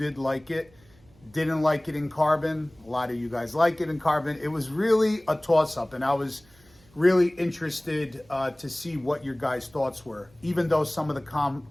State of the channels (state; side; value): noise; right; hum, 29 dB below the sound